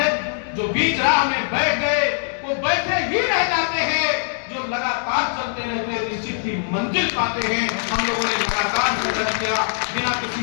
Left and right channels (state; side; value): silent; right; digital silence